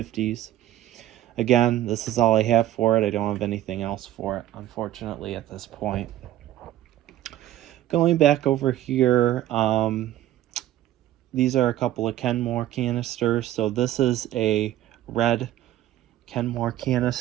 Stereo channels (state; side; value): quieter; left; 13.4 dB